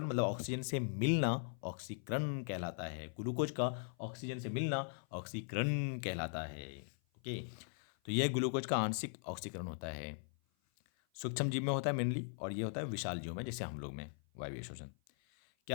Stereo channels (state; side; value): silent; right; 51 dB below the other